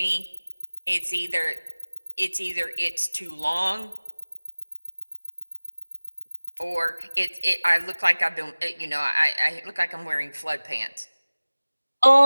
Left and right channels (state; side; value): inverted; both; correlation -1.00